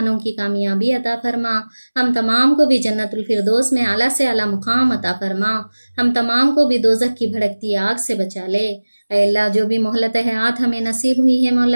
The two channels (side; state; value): both; inverted; correlation -1.00